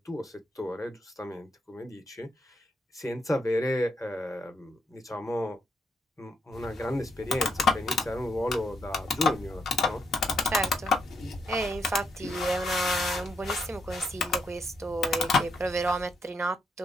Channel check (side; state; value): both; normal; correlation 0.79